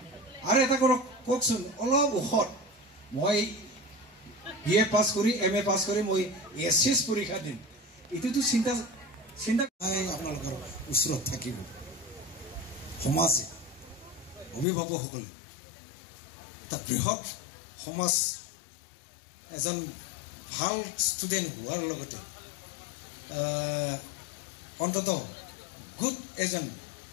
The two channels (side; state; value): right; drops out; at 14.7 s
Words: আৰু এটা কওকচোন অলপ ওখত মই বি এ পাছ কৰি এম এ পাছ কৰি মই এছ পৰীক্ষা দিম এইটোতো চিন্তা আপোনালোকৰ ওচৰত থাকিব সমাজে অভিভাৱকসকলে এটা বৃহৎ সমাজ এজন ভাল ষ্টুডেণ্ট হোৱাৰ লগতে অন্ততঃ গুড এজন